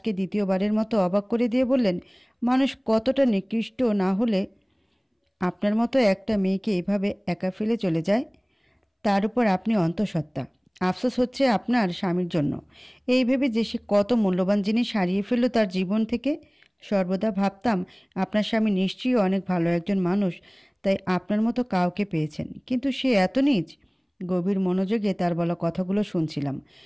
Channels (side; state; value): both; identical; correlation 1.00